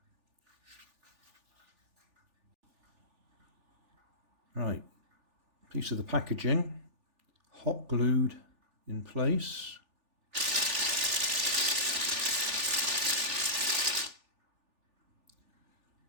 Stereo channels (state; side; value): late; left; 3.4 ms